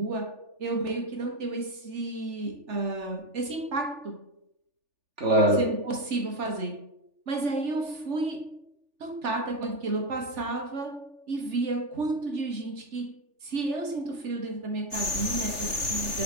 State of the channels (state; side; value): late; left; 3.4 ms